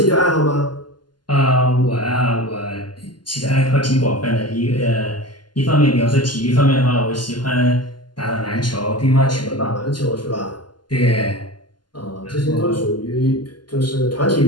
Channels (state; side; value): late; right; 0.71 ms